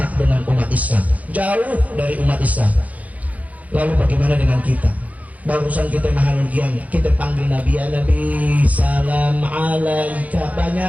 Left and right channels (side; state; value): left; late; 0.073 ms